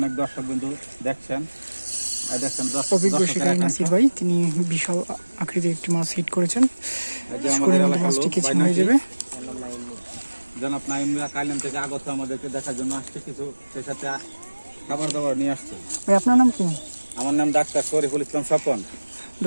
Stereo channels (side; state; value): both; inverted; correlation -1.00